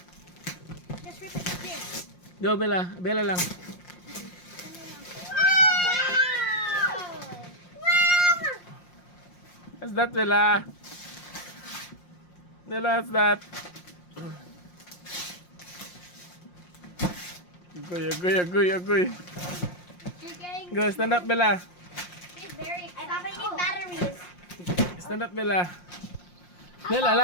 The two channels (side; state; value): right; late; 5.6 ms